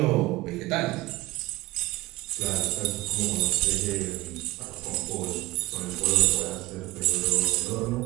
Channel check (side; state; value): left; quieter; 18.9 dB